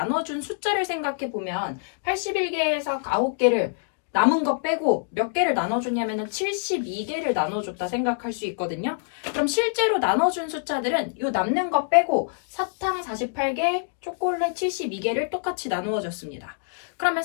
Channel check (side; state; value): right; silent; digital silence